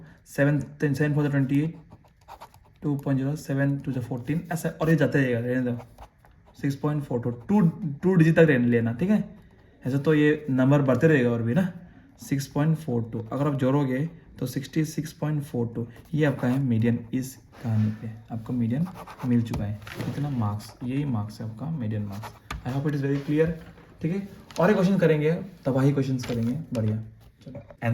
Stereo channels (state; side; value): identical; both; correlation 1.00